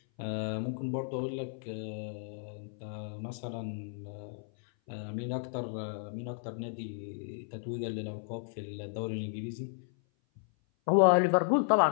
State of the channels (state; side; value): silent; right; 55 dB below the other